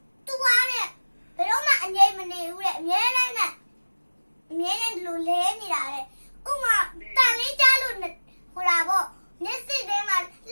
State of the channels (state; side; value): inverted; both; correlation -1.00